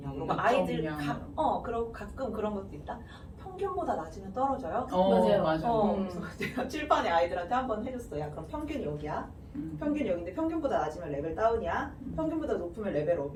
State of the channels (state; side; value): identical; both; correlation 1.00